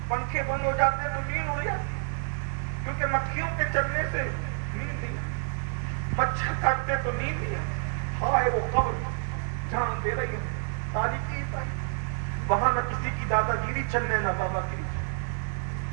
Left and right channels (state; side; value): silent; left; digital silence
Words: پنکھے بند ہو جاتے تو نیند اڑ جاتی, کیونکہ مکھیوں کے چلنے سے نیند نہیں, مچھر کاٹتے تو نیند نہیں. ہائے وہ قبر جان دے رہی ہے, تاریخی وہاں نہ کسی کی دادا گیری چلنے نہ بابا گیری,